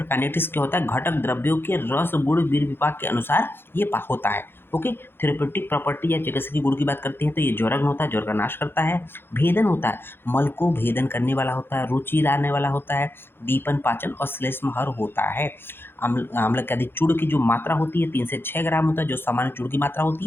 क्या होता है? घटक द्रव्यों के रस गुण वीर विपाक के अनुसार ये होता है। ओके, थेरेप्यूटिक प्रॉपर्टी या चिकित्सकीय गुण की बात करते हैं तो ये ज्वरग्न होता है, ज्वर का नाश करता है। भेदन होता है, मल को भेदन करने वाला होता है, रुचि लाने वाला होता है, दीपन पाचन और श्लेष्महर होता है। आम्लक्यादि चूर्ण की जो मात्रा होती है 3 से 6 ग्राम होता है, जो सामान्य चूर्ण की मात्रा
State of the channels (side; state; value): right; late; 0.10 ms